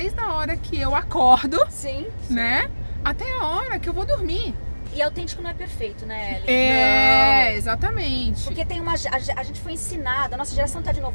a hora que eu acordo, né? Até a hora que eu vou dormir. E autêntico não é perfeito, né, Ellen? Exatamente. Porque tem a gente foi ensinada, a nossa geração tá de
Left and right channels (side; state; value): both; inverted; correlation -1.00